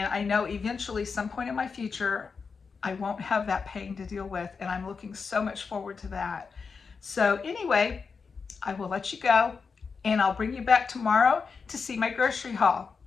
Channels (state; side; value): quieter; right; 5.2 dB